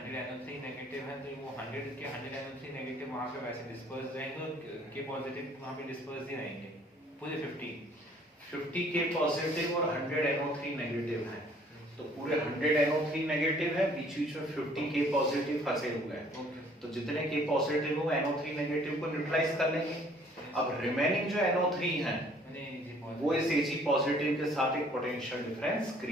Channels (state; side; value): normal; both; correlation 0.58